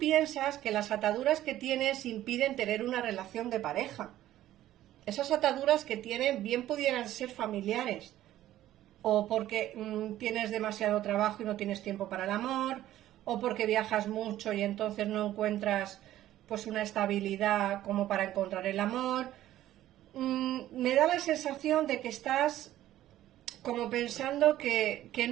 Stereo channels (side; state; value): left; quieter; 13.6 dB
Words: que las ataduras que tienes impiden tener una relación de pareja. Esas ataduras que tienen bien pudieran ser familiares, o porque tienes demasiado trabajo y no tienes tiempo para el amor, o porque viajas mucho y entonces no encuentras pues una estabilidad como para encontrar el amor. Me da la sensación de que estás como pensando que